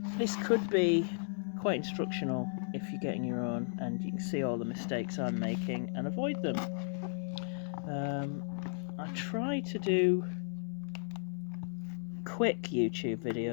This could be quite instructional if you're getting your own, and you can see all the mistakes I'm making and avoid them. I try to do quick YouTube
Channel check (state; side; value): silent; right; digital silence